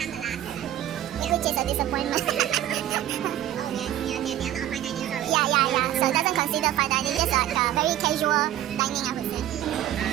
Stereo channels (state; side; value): quieter; left; 12.5 dB